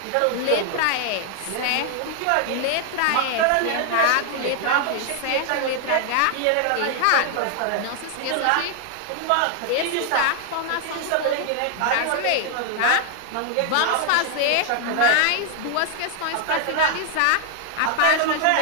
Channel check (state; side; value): different; both; correlation 0.00